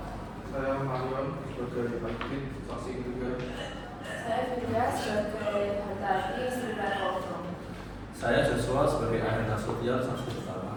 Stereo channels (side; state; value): both; identical; correlation 1.00